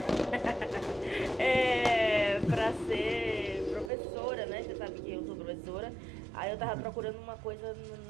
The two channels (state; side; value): drops out; left; at 3.9 s